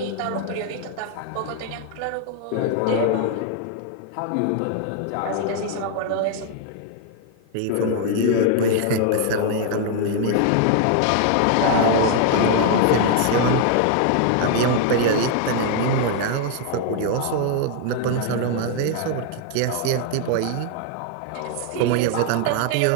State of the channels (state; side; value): different; both; correlation 0.00